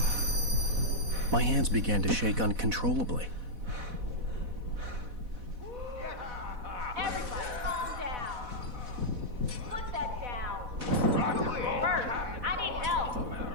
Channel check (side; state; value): left; late; 4.1 ms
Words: My hands began to shake uncontrollably. Everybody, calm down. Put that down. Bert, I need help.